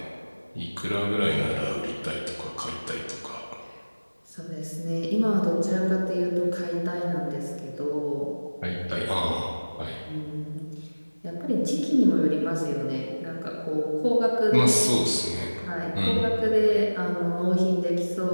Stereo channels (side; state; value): both; inverted; correlation -1.00